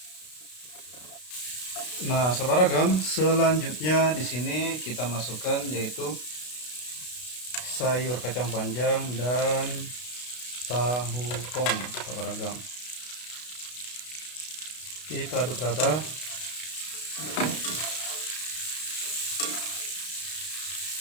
Nah, sahabat ragam, selanjutnya di sini kita masukkan yaitu sayur kacang panjang dan tahu pong, sahabat ragam. Kita aduk rata.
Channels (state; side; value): late; right; 32 ms